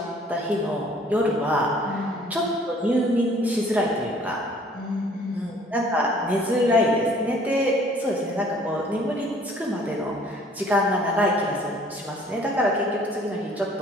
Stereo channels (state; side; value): normal; both; correlation 0.56